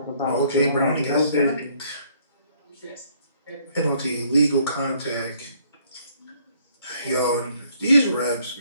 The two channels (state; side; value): inverted; both; correlation -0.64